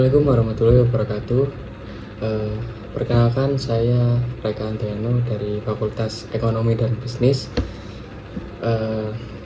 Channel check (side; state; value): both; identical; correlation 1.00